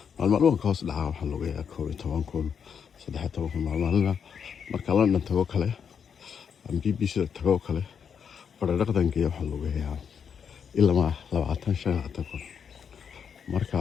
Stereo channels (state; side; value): quieter; right; 7.2 dB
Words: maalmahan ka hoos dhacaa waxaan lugeeyaa 12,000 13,000 maalmaalina marka London tago kale BBC tago kale baradhaqdan geeyo waxaan lugeeyaa ilaa 25,000 marka